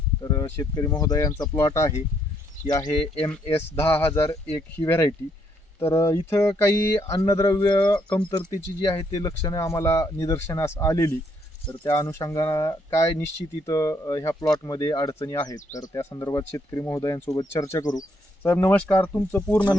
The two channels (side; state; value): both; normal; correlation 0.72